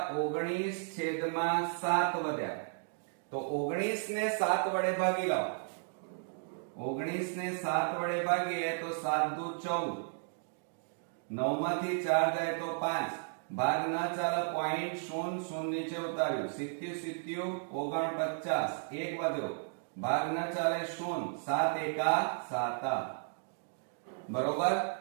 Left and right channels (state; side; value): silent; left; digital silence